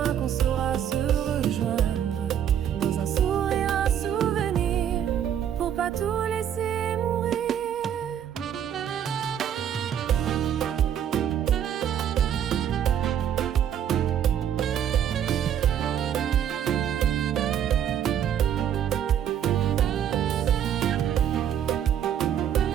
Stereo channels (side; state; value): left; quieter; 9.4 dB